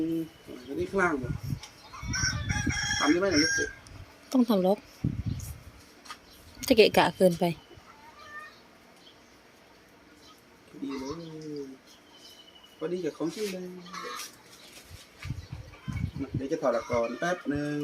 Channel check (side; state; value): both; identical; correlation 1.00